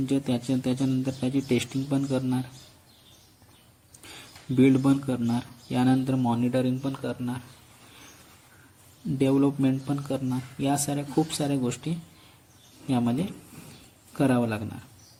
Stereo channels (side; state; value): both; identical; correlation 1.00